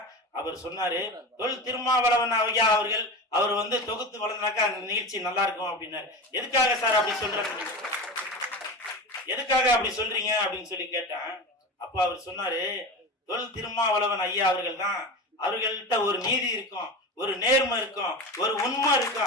அவர் சொன்னாரு தொல் திருமாவளவன் ஐயா அவர்கள் அவர் தொகுத்து வளர்ந்தாக்கா அந்த நிகழ்ச்சி நல்லா இருக்கும் அப்படின்னாரு. எதுக்காக சார் அப்படி சொல்றாங்க, எதுக்காக அப்படி சொல்றீங்க அப்படின்னு சொல்லி கேட்டேன். அப்ப அவர் சொன்னாரு, தொல் திருமாவளவன் ஐயா அவர்கள் தான், அவர்கள்ட்ட ஒரு நீதி இருக்கும், ஒரு நேர்மை இருக்கும், ஒரு உண்மை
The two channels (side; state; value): both; normal; correlation 0.27